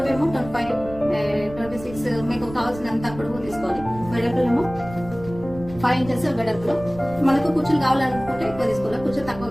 25, 26 మీకు కావాల్సినంత పొడవు తీసుకోవాలి. వెడల్పులేమో 5 ఇంచెస్ వెడల్పులో. మనకు కుర్చీలు కావాలనుకుంటే ఎక్కువ తీసుకోవాలి, కుర్చీలు తక్కువ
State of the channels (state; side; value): noise; right; rumble, 15 dB below the sound